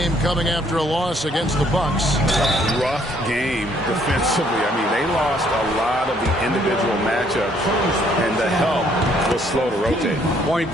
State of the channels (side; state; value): both; normal; correlation 0.65